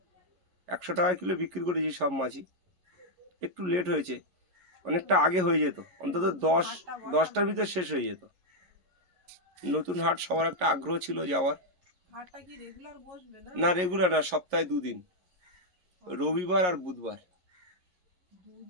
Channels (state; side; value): late; left; 11 ms